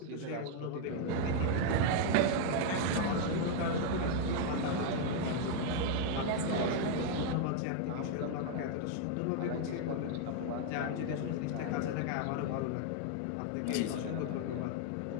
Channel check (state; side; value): different; both; correlation 0.00